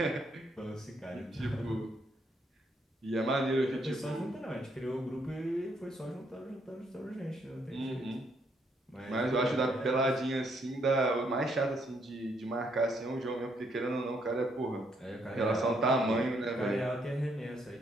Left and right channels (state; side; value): normal; both; correlation 0.73